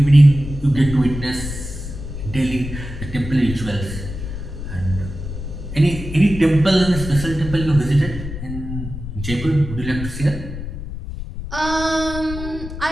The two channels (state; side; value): noise; left; rumble, 8 dB below the sound